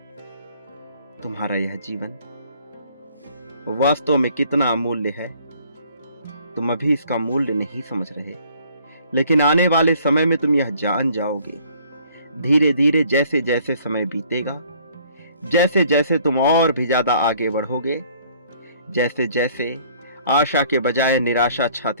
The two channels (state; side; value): inverted; both; correlation -0.59